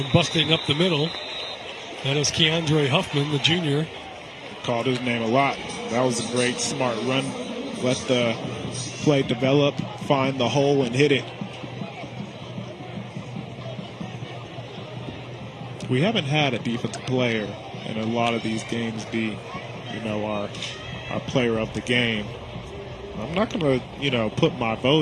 busting up the middle. That is Keandre Huffman, the junior. Called his name a lot. That was a great, smart run. Let the play develop, find the hole, and hit it. We haven't had a defensive player in a lot of these games be, our player of the game. I'm not going to, put my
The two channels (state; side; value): identical; both; correlation 1.00